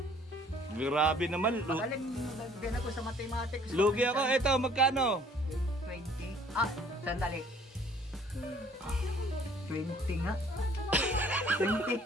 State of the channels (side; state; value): both; normal; correlation 0.56